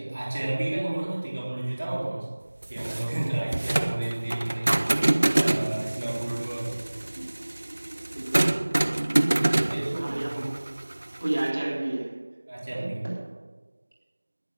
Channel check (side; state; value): both; inverted; correlation -1.00